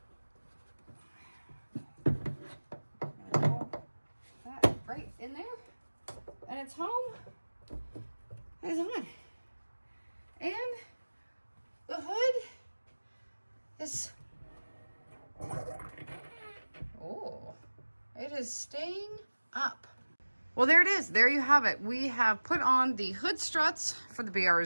That right in there, and it's home. It's on, and the hood is, oh, it is staying up. Well, there it is. There you have it. We have put on the hood struts for the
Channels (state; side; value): inverted; both; correlation -1.00